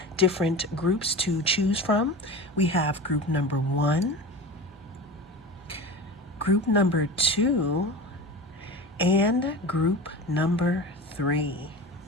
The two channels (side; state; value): both; normal; correlation 0.31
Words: different groups to choose from. We have group number 1, group number 2, and group number 3.